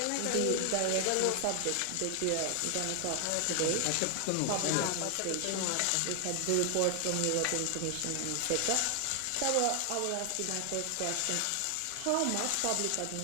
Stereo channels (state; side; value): different; both; correlation 0.00